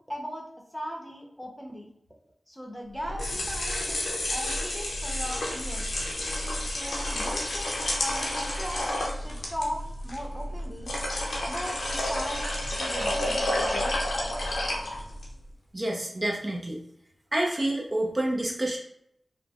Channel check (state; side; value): normal; both; correlation 0.94